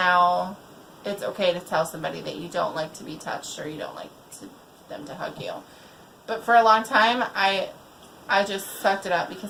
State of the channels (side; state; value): both; identical; correlation 1.00